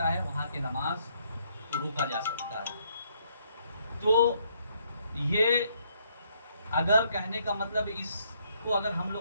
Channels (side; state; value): both; inverted; correlation -0.70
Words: है, वहाँ के नमाज को रोका जा सकता है। तो ये अगर कहने का मतलब, इसको अगर हम